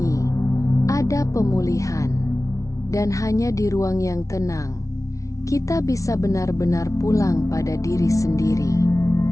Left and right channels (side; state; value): right; late; 0.16 ms